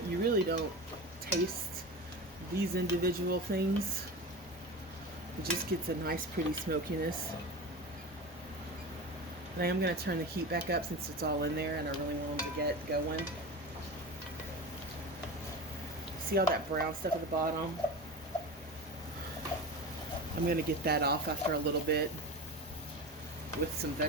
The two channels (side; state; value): both; normal; correlation 0.28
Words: you really don't taste these individual things. It just gets a nice pretty smokiness. And I am going to turn the heat back up since it's all in there and I really want them to get going. See all that brown stuff at the bottom? I'm going to get that off after a little bit with some